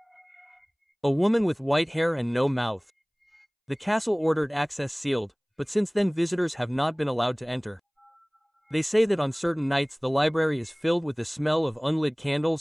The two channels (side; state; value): both; identical; correlation 1.00